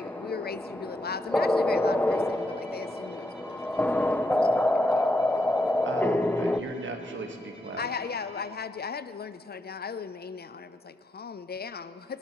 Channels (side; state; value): both; normal; correlation 0.81